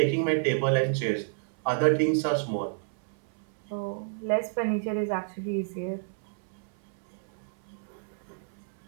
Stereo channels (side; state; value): left; silent; 58 dB below the other